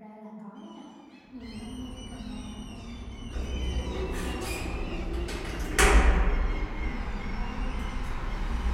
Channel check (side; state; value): both; identical; correlation 1.00